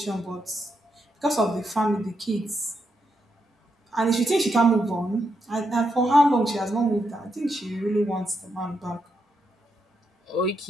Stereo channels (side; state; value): both; normal; correlation 0.82